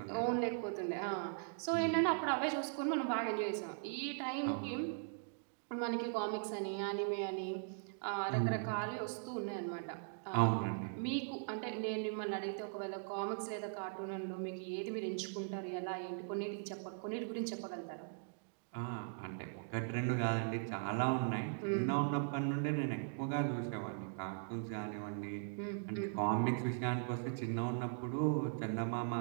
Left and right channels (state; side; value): silent; left; digital silence